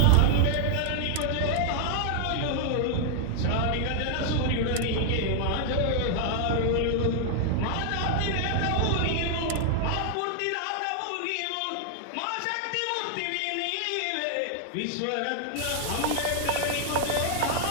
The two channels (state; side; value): different; both; correlation 0.00